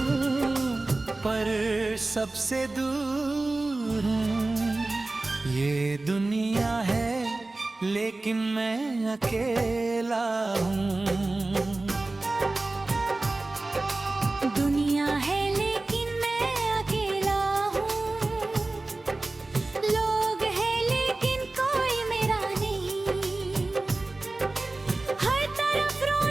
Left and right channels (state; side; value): quieter; left; 3.1 dB